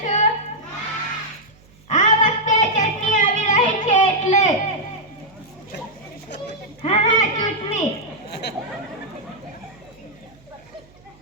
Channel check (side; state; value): right; noise; hum, 27 dB below the sound